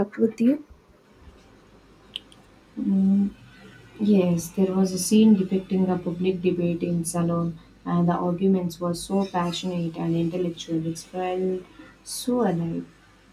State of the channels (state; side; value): identical; both; correlation 1.00